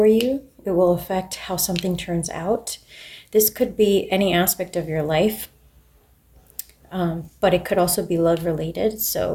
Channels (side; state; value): both; identical; correlation 1.00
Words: you. It will affect how something turns out. This could be any aspect of your life, but it could also be love related.